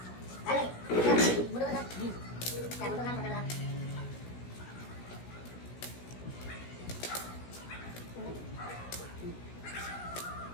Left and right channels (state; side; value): late; right; 16 ms